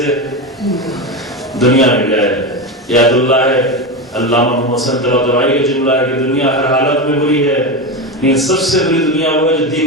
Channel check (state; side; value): normal; both; correlation 0.17